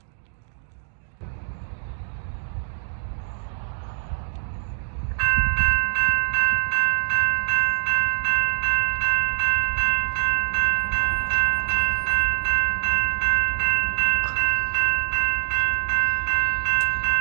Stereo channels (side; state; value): left; silent; digital silence